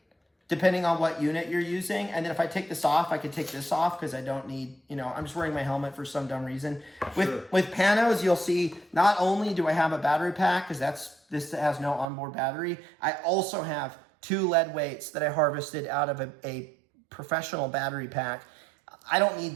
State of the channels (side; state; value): left; drops out; at 12.1 s